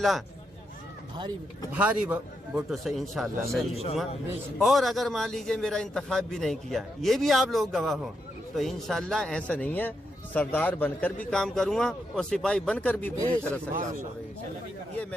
भारी वोटों से इंशाल्लाह मैं जीतूंगा। और अगर मान लीजिए मेरा इंतखाब भी नहीं किया, ये भी आप लोग गवाह हो, तो इंशाल्लाह ऐसा नहीं है, सरदार बनकर भी काम करूंगा और सिपाही बनकर भी पूरी तरह से काम करूंगा। ये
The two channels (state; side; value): normal; both; correlation 0.82